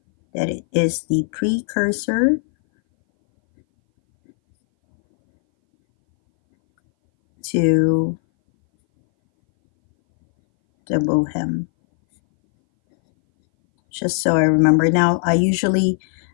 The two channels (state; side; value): silent; right; 61 dB below the other